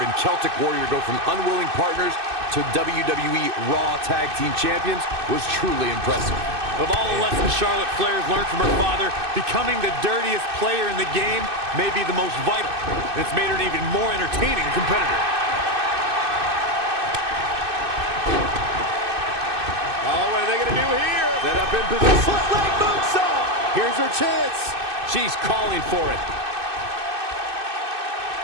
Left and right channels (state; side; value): late; left; 2.6 ms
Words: Celtic Warrior go from unwilling partners to WWE Raw Tag Team Champions was truly impressive. Of all the lessons Charlotte Flair has learned from her father, becoming the dirtiest player in the game may be the most vital. And it's made her an even more entertaining competitor. Oh, what are they going to do here? Set up in position. Foot leg moonsault. Here's her chance. She's calling for it.